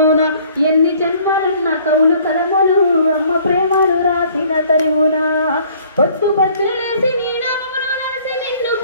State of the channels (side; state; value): both; inverted; correlation -0.56